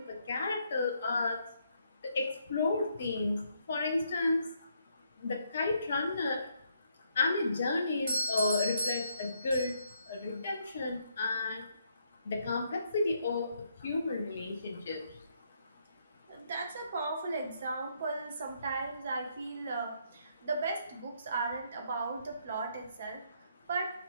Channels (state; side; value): inverted; both; correlation -0.74